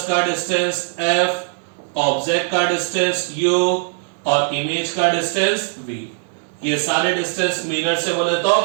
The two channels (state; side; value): silent; left; digital silence